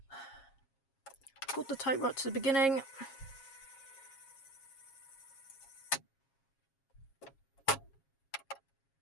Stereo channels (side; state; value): right; late; 7.3 ms